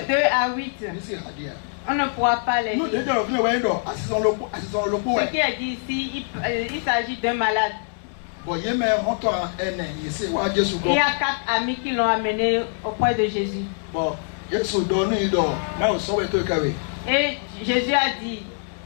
2 à 8. On ne pourra pas les lire. Ce qui est dit ici, il s'agit d'un malade. Il y a 4 amis qui l'ont amené auprès de Jésus. Et Jésus a dit,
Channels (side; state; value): right; silent; 59 dB below the other